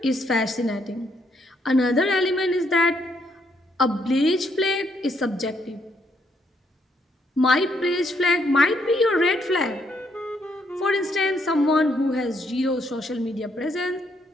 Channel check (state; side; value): normal; both; correlation 0.73